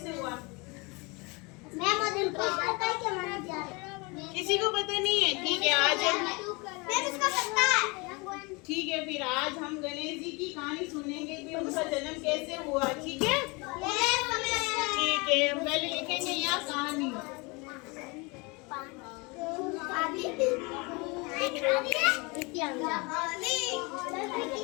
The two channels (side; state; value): right; quieter; 27.8 dB